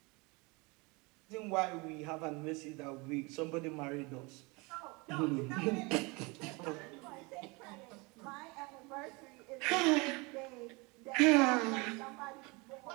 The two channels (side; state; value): left; quieter; 27.1 dB